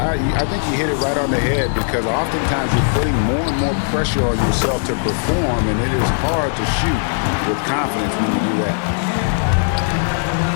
I think you hit it right on the head, because oftentimes you're putting more and more pressure on yourself to perform, and it is hard to shoot with confidence when you do that.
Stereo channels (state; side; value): silent; right; 67 dB below the other